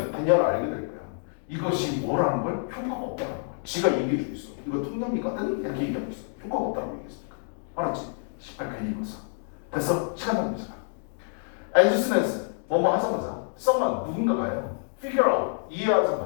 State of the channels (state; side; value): silent; right; 60 dB below the other